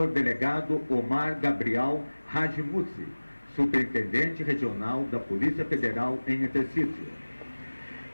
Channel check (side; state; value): both; inverted; correlation -1.00